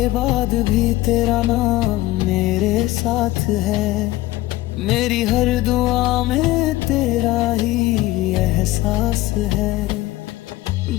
बाद भी तेरा नाम मेरे साथ है। मेरी हर दुआ में तेरा ही एहसास है।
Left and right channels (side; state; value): right; quieter; 17.5 dB